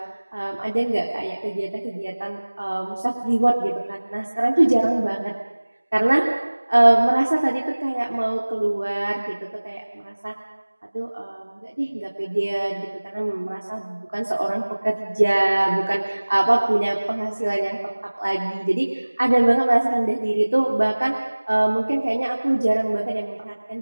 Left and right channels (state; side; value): inverted; both; correlation -1.00